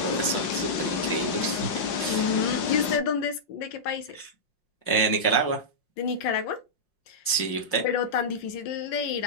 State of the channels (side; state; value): right; late; 5.6 ms